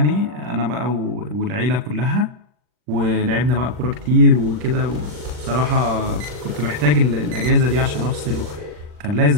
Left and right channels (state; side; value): late; left; 40 ms